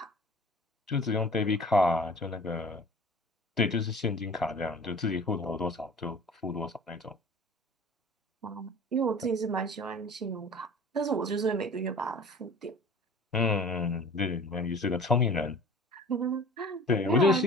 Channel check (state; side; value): normal; both; correlation 0.44